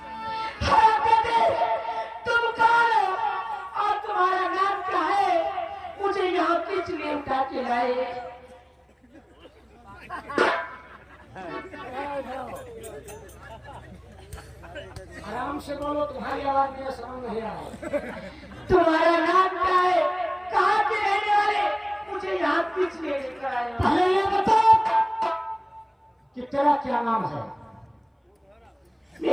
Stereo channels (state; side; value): identical; both; correlation 1.00